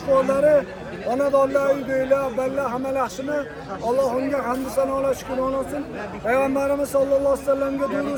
Xonadonlar, uydagilar, ballar hamma yaxshimi? Allohga hamd sanolar, shukr olsin. Payg'ambarimiz sollallohu alayhi vasallamga duo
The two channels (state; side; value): identical; both; correlation 1.00